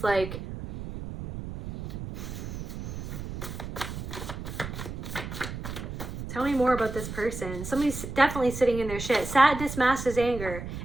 like tell me more about this person. Somebody's definitely sitting in their shit. Sadness masks as anger.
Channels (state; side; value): noise; right; rumble, 8 dB below the sound